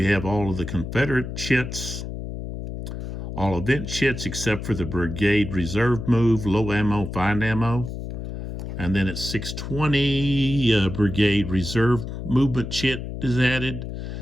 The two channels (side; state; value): left; noise; hum, 7 dB below the sound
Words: have all of the Confederate chits. All event chits except for the brigade reserve move, low ammo, fine ammo. And then at 6:20, brigade reserve movement chit is added.